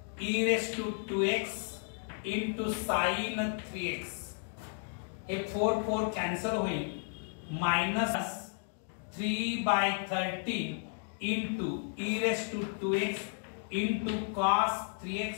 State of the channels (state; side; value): silent; right; 56 dB below the other